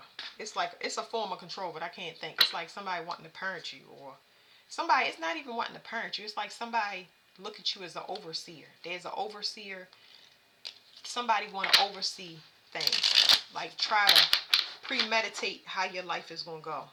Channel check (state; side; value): identical; both; correlation 1.00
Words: It's like, it's a form of control, but I can't think. It's like somebody wanting to parent you, or somebody, it's not even wanting to parent you. It's like somebody look at you as an overseer. There's an overseer. Somebody want to oversee things. Like try to premeditate how your life is going to go.